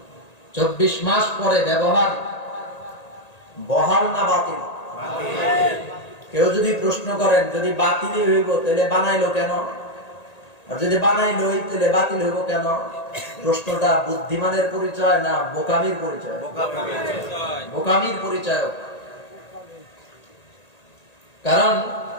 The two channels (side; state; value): right; late; 1.8 ms